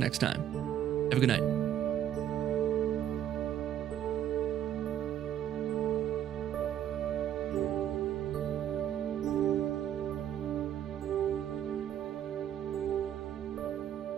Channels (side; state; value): left; quieter; 10.6 dB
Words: time. Have a good night.